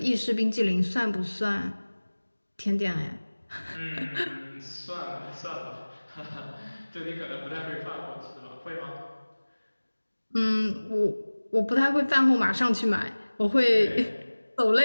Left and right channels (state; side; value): inverted; both; correlation -1.00